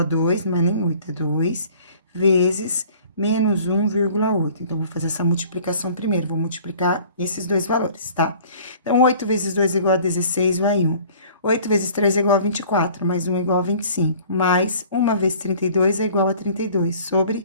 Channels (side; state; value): both; inverted; correlation -0.50